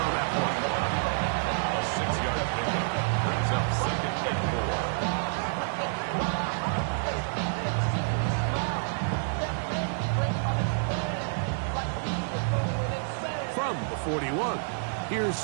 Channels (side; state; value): left; silent; digital silence